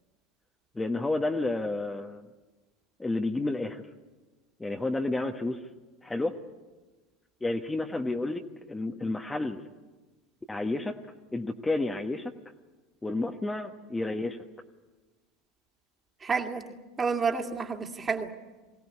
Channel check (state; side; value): normal; both; correlation 0.86